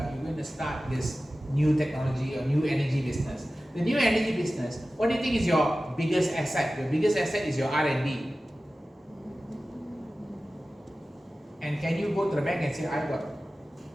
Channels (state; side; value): normal; both; correlation 0.95